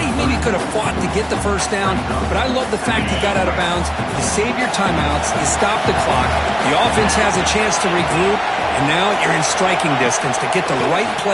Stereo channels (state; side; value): identical; both; correlation 1.00